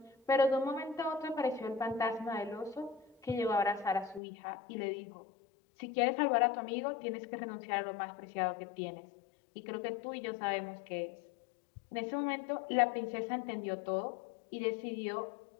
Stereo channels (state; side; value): drops out; right; at 4.2 s